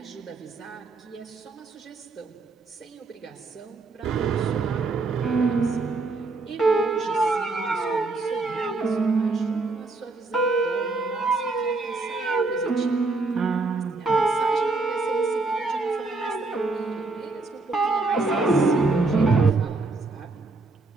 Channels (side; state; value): left; quieter; 3.6 dB